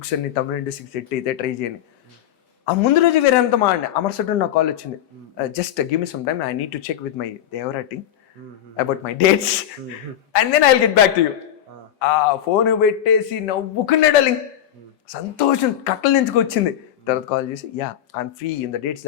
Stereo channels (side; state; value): right; quieter; 10.9 dB